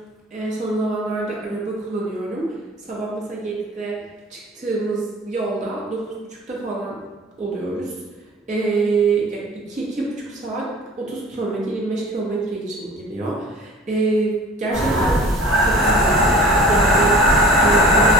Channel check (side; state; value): both; normal; correlation 0.43